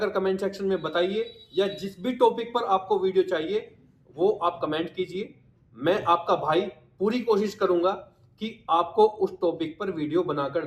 कमेंट सेक्शन में बताइए, या जिस भी टॉपिक पर आपको वीडियो चाहिए वो आप कमेंट कीजिए। मैं आपका भाई पूरी कोशिश करूंगा कि आपको उस टॉपिक पर वीडियो बनाकर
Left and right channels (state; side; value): identical; both; correlation 1.00